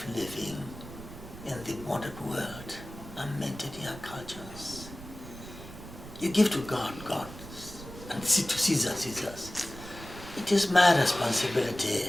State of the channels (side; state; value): right; noise; rumble, 14 dB below the sound